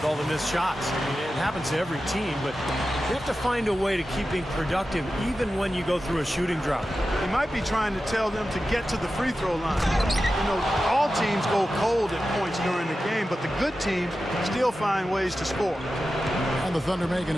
all the missed shots. I mean, it happens to every team, but you have to find a way to keep being productive even when you go through a shooting drought. He might be trying to tell them to get to the free throw line. You know, all teams go cold at points during the game, but the good teams still find ways to score. And the Thunder making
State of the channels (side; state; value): both; normal; correlation 0.93